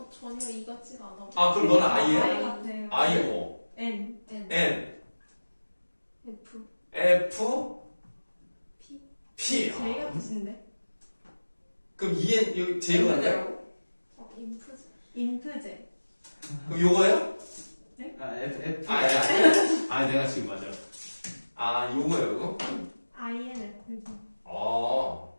전혀 이 같지가 않아. 아 그럼 너는 I예요? I 같아요. I고 N. N F F P P J 같으신데? 그럼 EN 여기 J로 갈까요? 인프즈 인프제. 그럼 요거예요? 아, F. 아 내가 지금 맞아. 아 요거예요 요거? INFJ.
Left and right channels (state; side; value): inverted; both; correlation -1.00